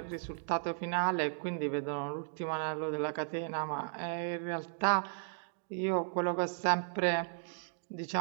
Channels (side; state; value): left; silent; digital silence